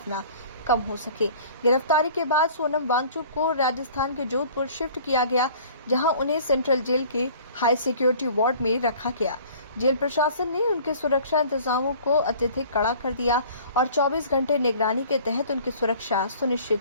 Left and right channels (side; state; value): both; inverted; correlation -0.49